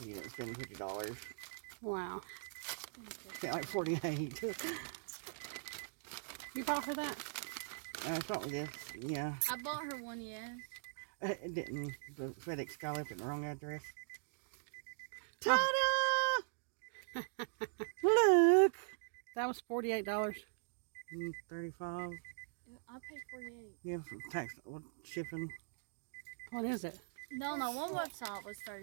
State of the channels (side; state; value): left; silent; digital silence